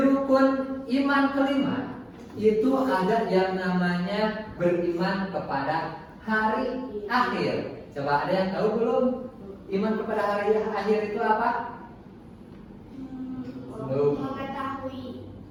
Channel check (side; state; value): both; identical; correlation 1.00